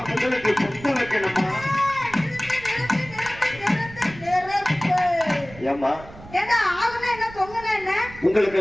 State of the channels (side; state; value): right; noise; rumble, 18 dB below the sound